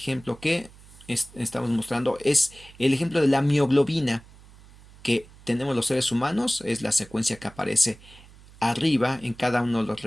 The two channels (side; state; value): right; noise; hum, 23 dB below the sound